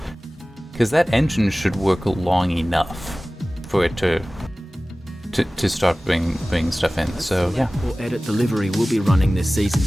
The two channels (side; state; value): both; normal; correlation 0.98